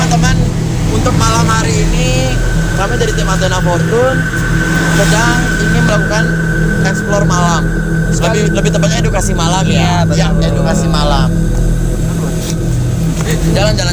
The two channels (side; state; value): both; identical; correlation 1.00